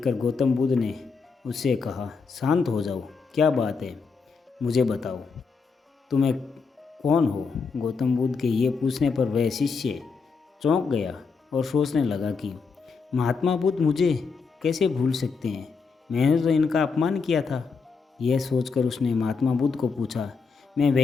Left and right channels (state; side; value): quieter; right; 5.0 dB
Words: गौतम बुद्ध ने उससे कहा, शांत हो जाओ, क्या बात है, मुझे बताओ, तुम्हें कौन हो। गौतम बुद्ध के ये पूछने पर वह शिष्य चौंक गया और सोचने लगा कि महात्मा बुद्ध मुझे कैसे भूल सकते हैं, मैंने तो इनका अपमान किया था। यह सोचकर उसने महात्मा बुद्ध को पूछा, मैं